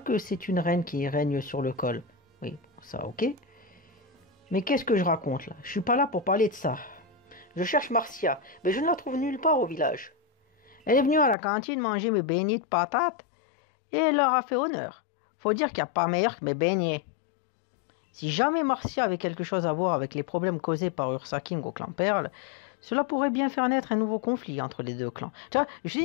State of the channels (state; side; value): drops out; right; at 11.4 s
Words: c'est une reine qui règne sur le col. Oui, ça, ok. Mais qu'est-ce que je raconte là? Je suis pas là pour parler de ça. Je cherche Marcia, mais je ne la trouve nulle part au village. Elle est venue à la cantine manger mes beignets de patates et elle leur a fait honneur. Faut dire qu'il n'y a pas meilleur que mes beignets. Si jamais Marcia avait quelque chose à voir avec les problèmes causés par Ursa King au clan Perle, Cela pourrait bien faire naître un nouveau conflit entre les deux clans. Tu vois, je